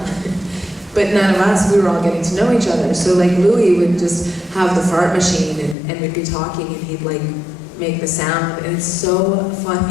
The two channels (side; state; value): right; drops out; at 5.8 s